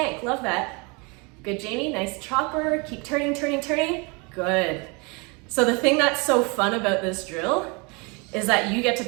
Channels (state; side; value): quieter; left; 30.1 dB